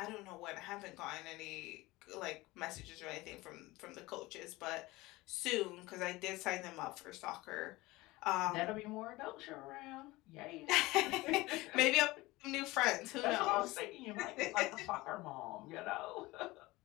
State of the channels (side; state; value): right; quieter; 20.4 dB